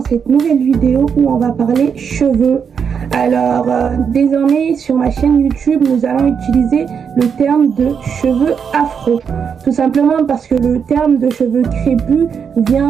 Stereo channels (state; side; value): quieter; left; 6.8 dB